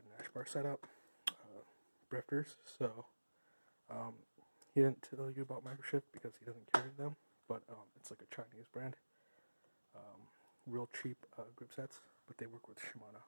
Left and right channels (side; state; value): both; inverted; correlation -1.00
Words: bar setup, Brifters. So he didn't tell you about microshift because he doesn't carry them, but it's like a Chinese brand. Real cheap grip sets, but they work with Shimano